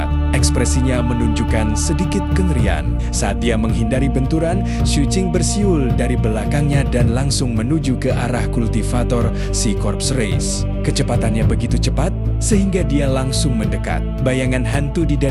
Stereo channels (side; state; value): both; identical; correlation 1.00